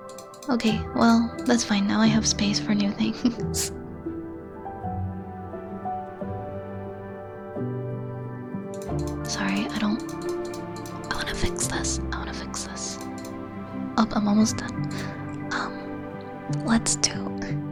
Okay, well, that's fine. Now I have space for new things. Sorry, I wanna fix this. Oh, I'm almost done. Let's do...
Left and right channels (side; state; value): both; identical; correlation 1.00